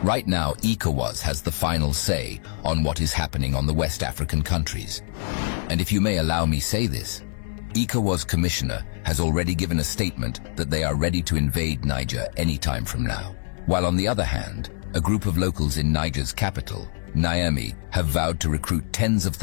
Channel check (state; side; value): silent; right; digital silence